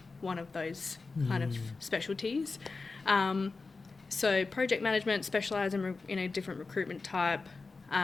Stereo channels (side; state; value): right; quieter; 4.0 dB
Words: one of those kind of specialties. So project management, specialise in a different recruitment type.